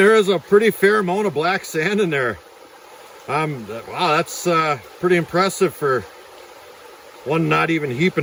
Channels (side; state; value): both; identical; correlation 1.00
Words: is a pretty fair amount of black sand in there. Wow, that's pretty impressive for one not even